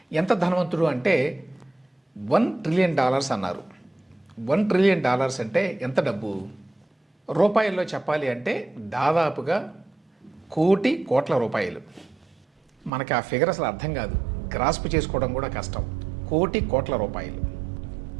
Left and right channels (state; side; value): drops out; left; at 12.9 s